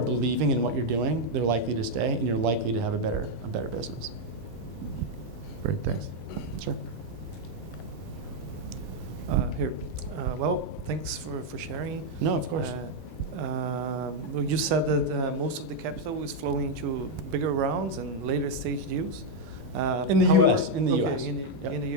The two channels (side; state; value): right; late; 7.0 ms